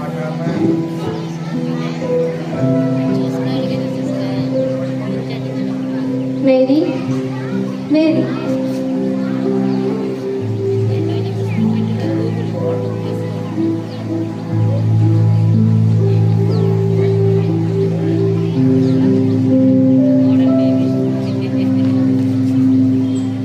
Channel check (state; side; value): identical; both; correlation 1.00